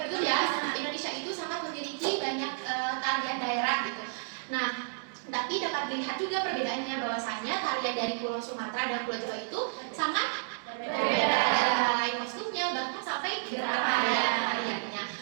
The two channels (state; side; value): silent; left; digital silence